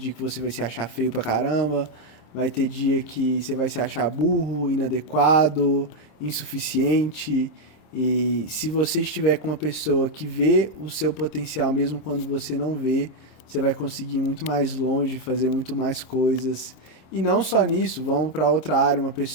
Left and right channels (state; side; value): late; right; 26 ms